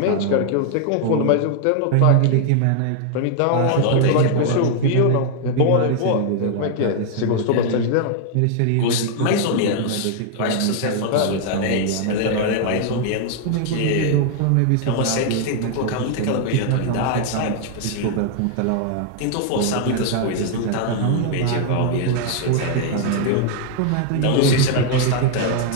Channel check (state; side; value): different; both; correlation 0.00